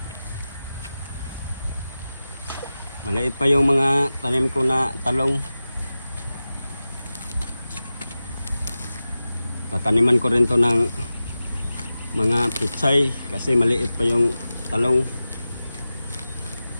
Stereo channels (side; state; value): both; inverted; correlation -0.94